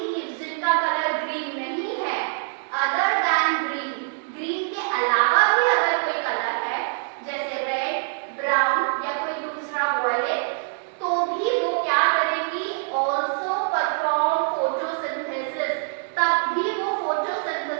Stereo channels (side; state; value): left; silent; digital silence